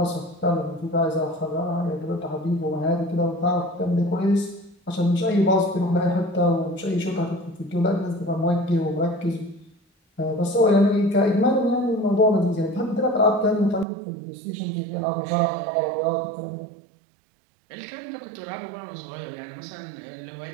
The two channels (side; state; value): left; drops out; at 13.9 s